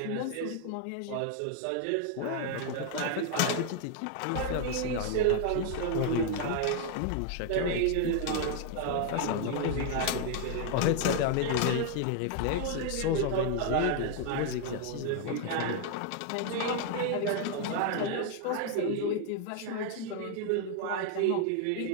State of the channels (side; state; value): both; different; correlation 0.00